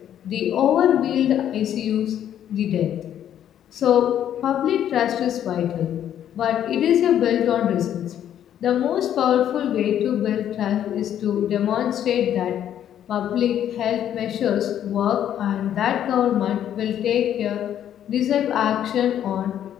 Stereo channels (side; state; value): right; quieter; 10.4 dB